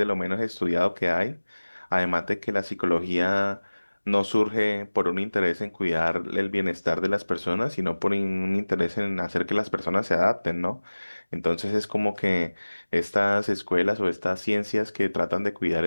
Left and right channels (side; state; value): both; inverted; correlation -1.00